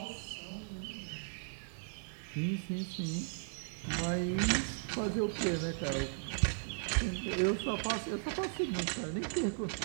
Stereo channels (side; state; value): left; silent; 53 dB below the other